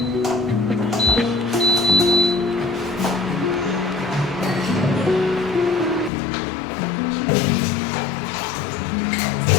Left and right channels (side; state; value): right; drops out; at 6.1 s